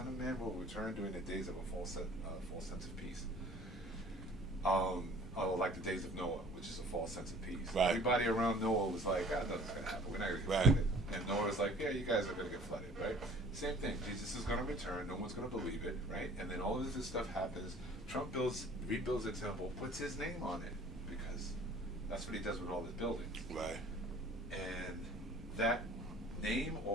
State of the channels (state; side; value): normal; both; correlation 0.50